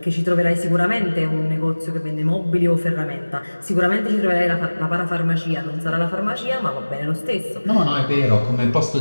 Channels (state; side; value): inverted; both; correlation -1.00